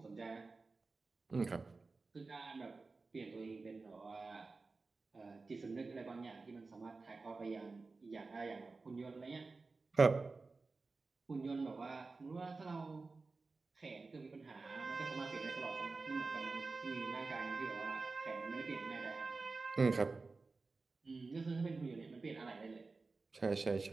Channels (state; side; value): quieter; left; 3.9 dB